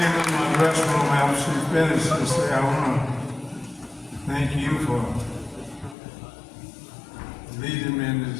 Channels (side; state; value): right; drops out; at 6.0 s